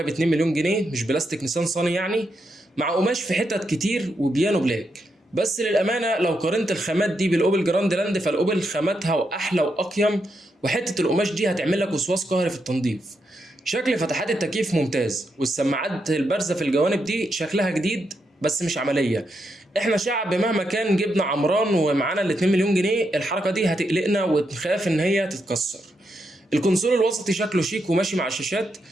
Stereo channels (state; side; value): normal; both; correlation 0.82